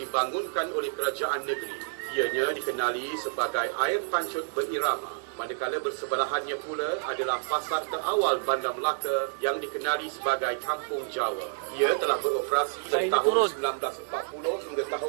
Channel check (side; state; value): left; silent; 59 dB below the other